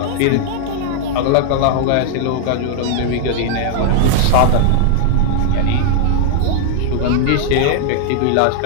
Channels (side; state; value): both; different; correlation 0.00